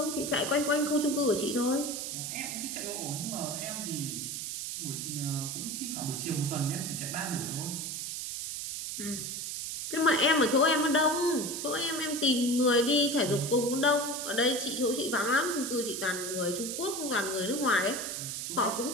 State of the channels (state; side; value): noise; right; hiss, 5 dB below the sound